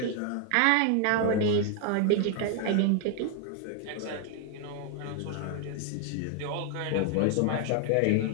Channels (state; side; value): different; both; correlation 0.00